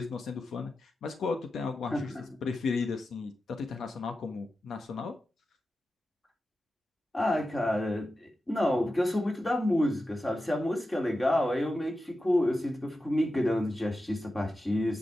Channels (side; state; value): both; normal; correlation 0.92